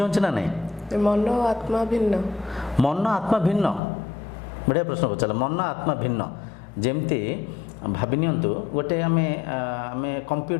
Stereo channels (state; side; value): drops out; right; at 3.8 s